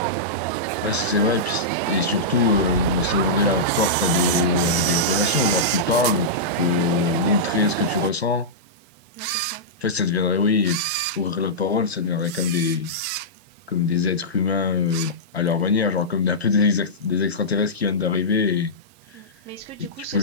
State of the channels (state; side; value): normal; both; correlation -0.13